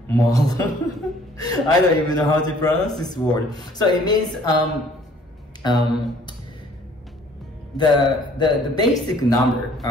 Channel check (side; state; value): both; normal; correlation 0.57